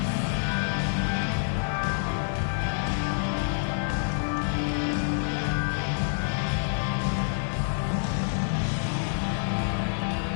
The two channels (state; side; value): silent; right; 60 dB below the other